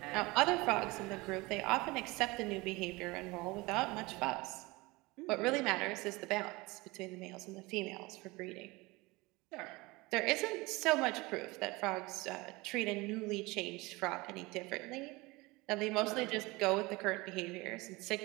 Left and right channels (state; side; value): quieter; left; 23.0 dB